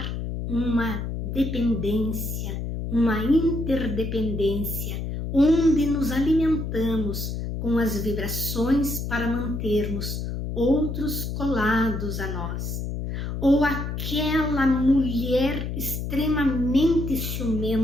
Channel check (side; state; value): left; noise; hum, 4 dB below the sound